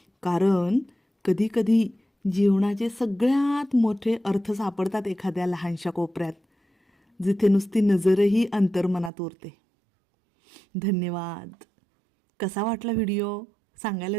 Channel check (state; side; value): drops out; left; at 9.1 s